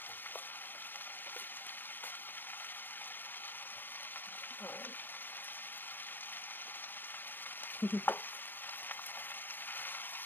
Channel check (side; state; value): right; late; 0.094 ms